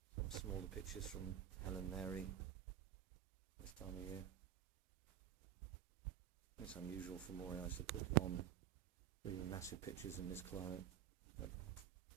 some smaller pictures from Helen Mary this time of year. It's unusual for Morias to put on really massive pictures in this climate, but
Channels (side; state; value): left; quieter; 10.7 dB